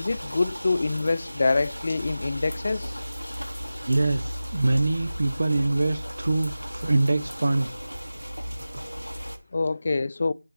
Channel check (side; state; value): both; inverted; correlation -0.95